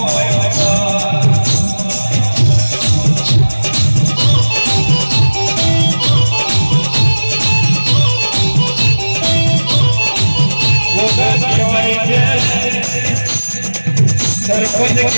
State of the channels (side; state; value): both; inverted; correlation -1.00